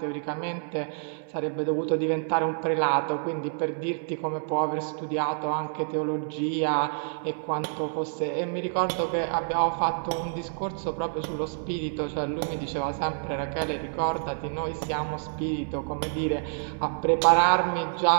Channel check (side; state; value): left; silent; 60 dB below the other